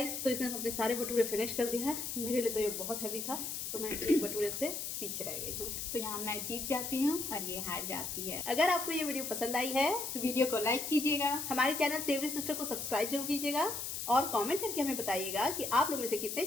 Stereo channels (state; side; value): noise; left; hiss, 4 dB below the sound